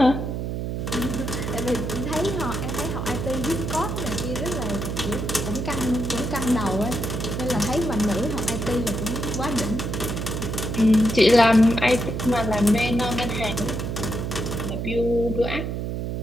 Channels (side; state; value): right; noise; hum, 3 dB below the sound